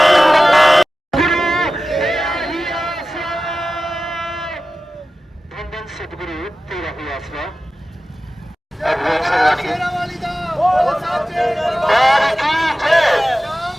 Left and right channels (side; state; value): both; normal; correlation 0.95